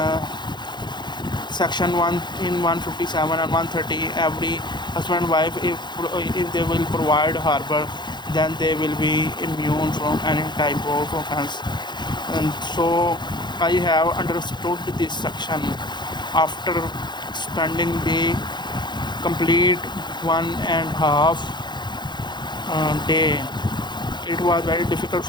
section 1 in 157 and 130 every husband and wife, if they will provide harbor, then they will be immune from any type of offense. And so I have understood this section after spending the complete 1.5 day. It was very difficult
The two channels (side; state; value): right; late; 0.21 ms